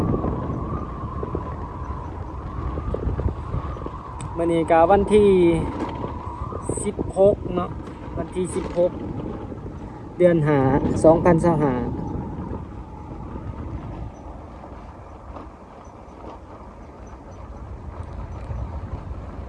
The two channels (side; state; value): both; identical; correlation 1.00